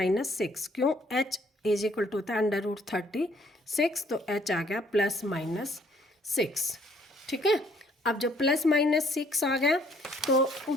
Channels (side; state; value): both; normal; correlation 0.63